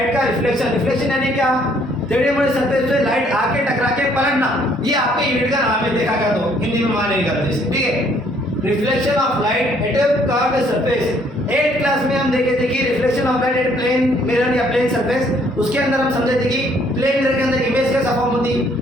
का रिफ्लेक्शन। रिफ्लेक्शन यानी क्या, टेढ़े मोड़े सरफेस पे लाइट आके टकरा के पलटना, ये आपके यूनिट का नाम है। देखा गया तो हिंदी में मान नहीं करते, ठीक है। Reflection of light at a curved surface. 8th class में हम देखे थे कि reflection of light at plane mirror या प्लेन सरफेस, उसके अंदर हम समझे थे कि प्लेन मिरर के अंदर इमेज कैसा फॉर्म होती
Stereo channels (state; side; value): normal; both; correlation 0.64